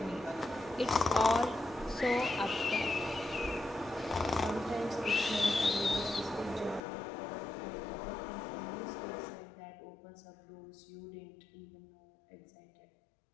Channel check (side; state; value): right; drops out; at 6.8 s